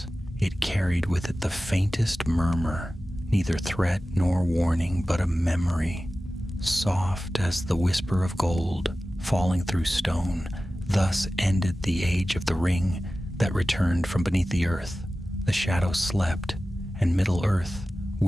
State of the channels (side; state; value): both; normal; correlation 0.95